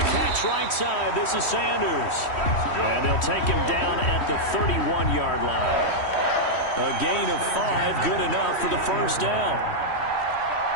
catch right side, this is Sanders. And they'll take him down at the 31-yard line. A gain of 5, good enough for the 1st down.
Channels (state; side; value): late; right; 3.1 ms